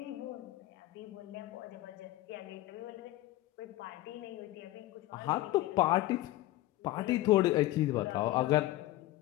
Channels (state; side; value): quieter; right; 16.6 dB